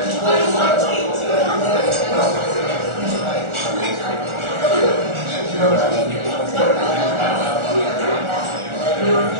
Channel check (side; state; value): left; late; 1.4 ms